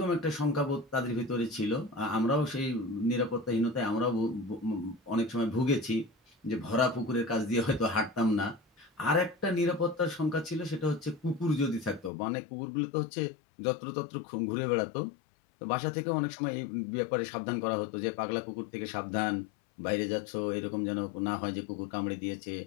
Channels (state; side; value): drops out; right; at 12.1 s